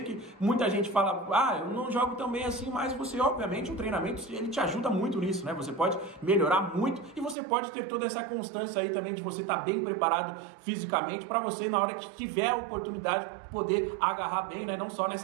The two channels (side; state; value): left; drops out; at 7.4 s